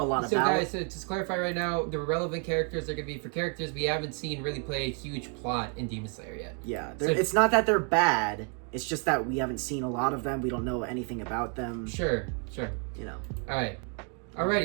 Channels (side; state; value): left; quieter; 40.0 dB